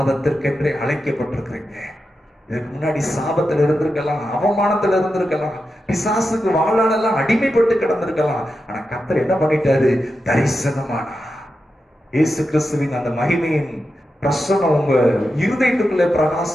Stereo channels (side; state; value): both; normal; correlation 0.89